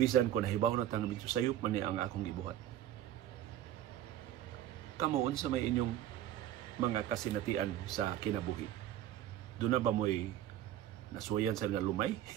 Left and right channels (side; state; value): left; quieter; 12.1 dB